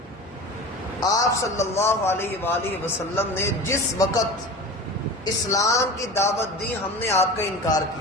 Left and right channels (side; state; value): both; normal; correlation 0.34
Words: آپ صلی اللہ علیہ وآلہ وسلم نے جس وقت اسلام کی دعوت دی ہم نے آپ کا انکار